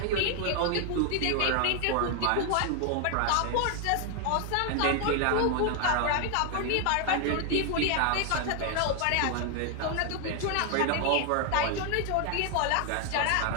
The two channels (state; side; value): different; both; correlation 0.00